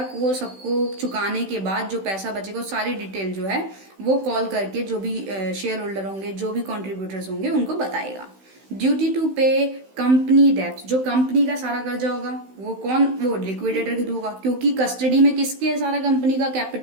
को सबको चुकाने के बाद जो पैसा बचेगा सारी डिटेल जो है वो कॉल करके जो भी शेयर होल्डर होंगे, जो भी कॉन्ट्रीब्यूटर्स होंगे उनको बताएगा। ड्यूटी टू पे कंपनी डेप्ट। जो कंपनी का सारा कर्जा होगा वो लिक्विडेटर के थ्रू होगा, क्योंकि कस्टडी में किसके है, सारा कंपनी का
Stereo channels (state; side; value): late; left; 16 ms